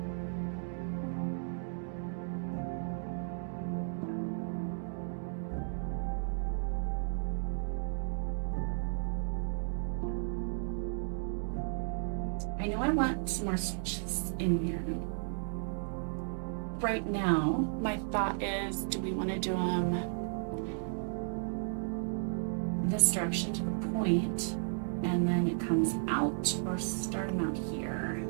I know I want some more switches in here. Right now, my thought is, do we want to do them this direction to the point, and then it comes out, or start them out here,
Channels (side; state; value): left; silent; digital silence